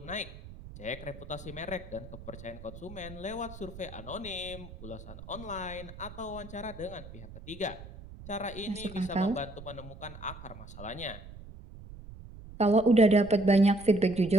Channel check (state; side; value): noise; right; rumble, 15 dB below the sound